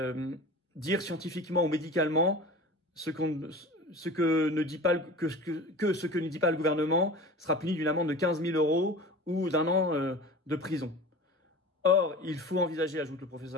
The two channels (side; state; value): both; normal; correlation 0.36